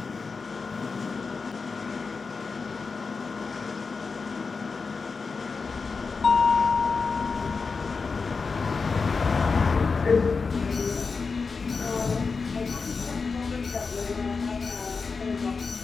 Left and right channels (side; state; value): right; quieter; 4.7 dB